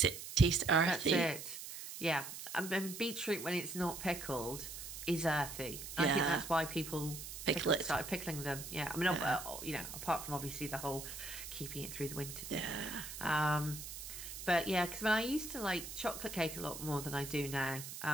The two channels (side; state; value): right; noise; hiss, 9 dB below the sound